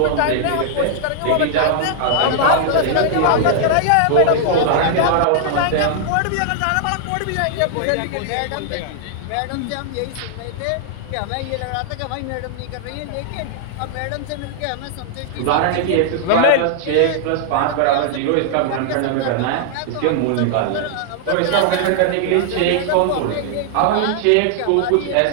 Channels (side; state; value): both; different; correlation -0.01